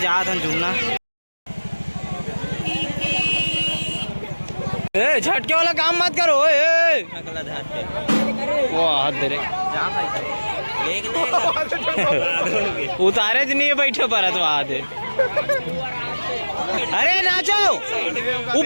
हन झूलना। ए झटके वाला काम मत करो ए वो हाथ दे रे उतारे नहीं बैठे पर तो हाथ अरे नाचो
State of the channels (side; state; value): both; inverted; correlation -1.00